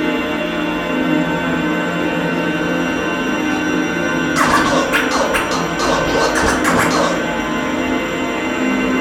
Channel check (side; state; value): both; identical; correlation 1.00